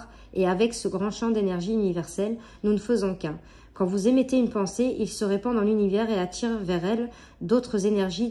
et avec ce grand champ d'énergie universelle, nous ne faisons qu'un. Quand vous émettez une pensée, il se répand dans l'univers et attire vers elle d'autres énergies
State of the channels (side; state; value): both; identical; correlation 1.00